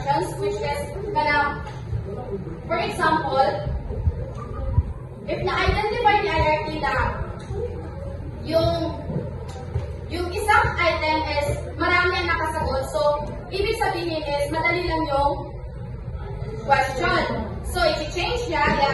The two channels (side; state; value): both; identical; correlation 1.00